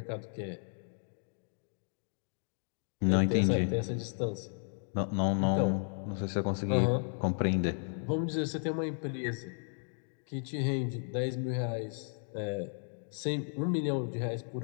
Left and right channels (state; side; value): silent; right; 55 dB below the other